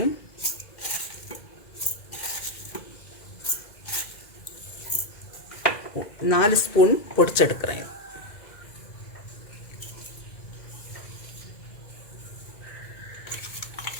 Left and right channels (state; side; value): late; right; 2.0 ms